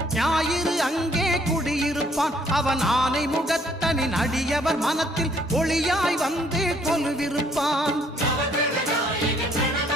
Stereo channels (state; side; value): normal; both; correlation 0.64